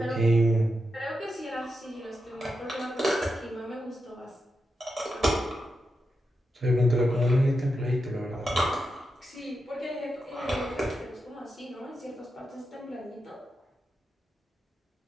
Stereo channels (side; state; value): both; normal; correlation 0.87